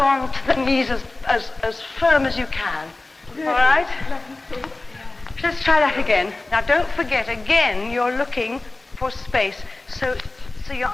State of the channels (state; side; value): quieter; right; 3.0 dB